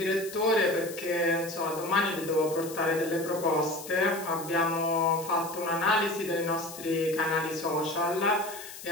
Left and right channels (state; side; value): noise; left; hiss, 13 dB below the sound